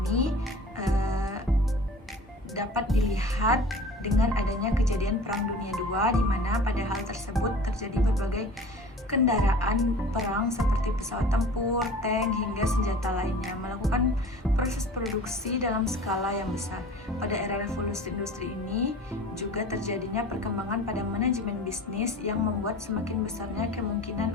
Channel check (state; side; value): normal; both; correlation 0.42